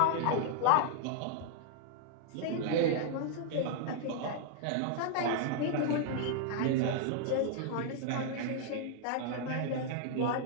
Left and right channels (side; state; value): both; different; correlation -0.01